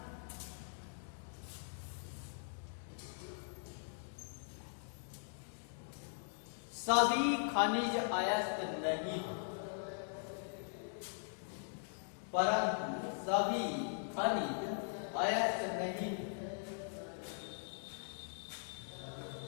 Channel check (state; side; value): silent; right; digital silence